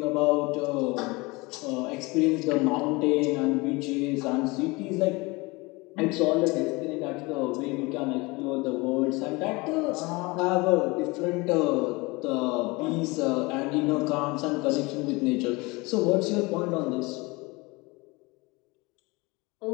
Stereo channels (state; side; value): quieter; right; 24.6 dB